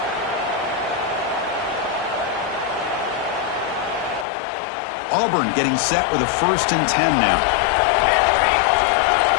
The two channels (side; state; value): right; drops out; at 4.2 s